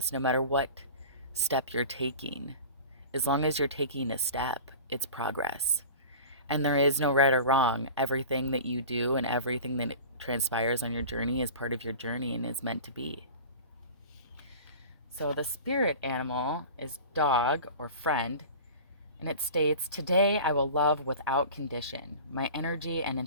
no matter what step you're taking. As long as you're taking a step, it's progress. And there is no right or wrong. Everything that you do and everything that transpires on your journey is part of your journey and is meant to be. So the spirit animal is dog or friend, and it states, "Today I will love without condition. My energy and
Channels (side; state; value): both; inverted; correlation -0.37